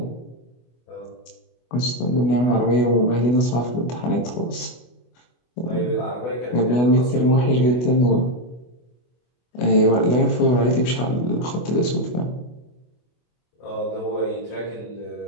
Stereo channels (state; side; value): late; right; 24 ms